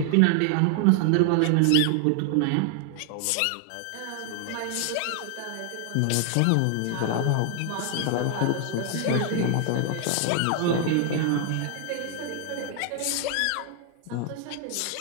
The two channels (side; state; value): both; different; correlation 0.00